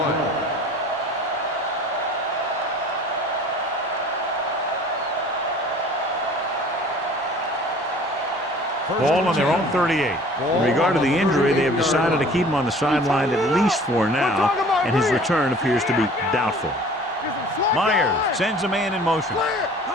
Ball on their own 38. In regard to the injury, they have decided to keep him on the sideline at least for now, and his return appears to be doubtful. Myers sends a man in motion.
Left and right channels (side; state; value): both; normal; correlation 0.48